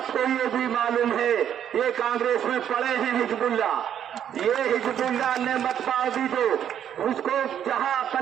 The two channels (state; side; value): quieter; left; 9.6 dB